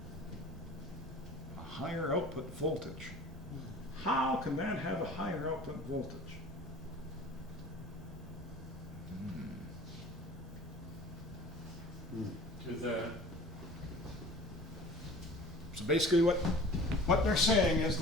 A higher output voltage. How can that have a higher output voltage? To the, So basically what they're saying is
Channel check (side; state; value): both; normal; correlation 0.43